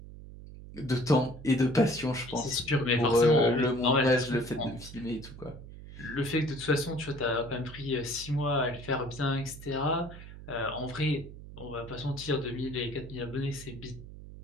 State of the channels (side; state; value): right; noise; hum, 14 dB below the sound